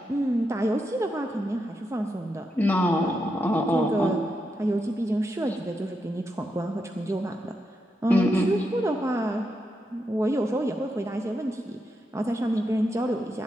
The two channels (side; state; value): both; normal; correlation 0.84